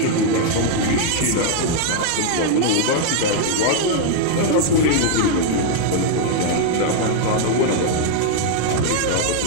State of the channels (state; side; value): different; both; correlation 0.00